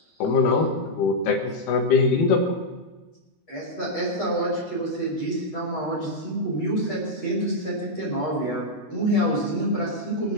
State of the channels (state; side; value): late; right; 13 ms